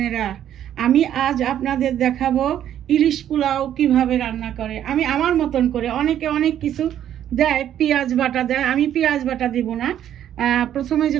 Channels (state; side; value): quieter; left; 10.7 dB